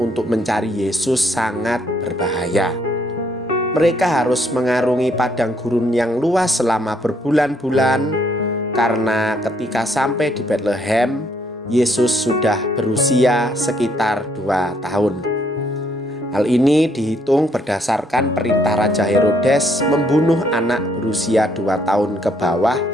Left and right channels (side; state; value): both; normal; correlation 0.69